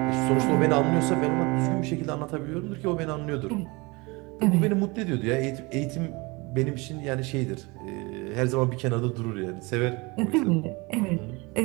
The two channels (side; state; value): left; quieter; 25.8 dB